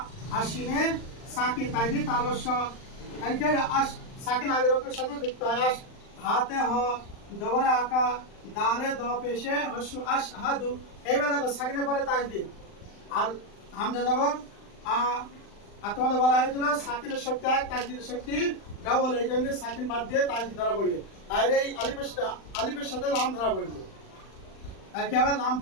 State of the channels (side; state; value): right; late; 39 ms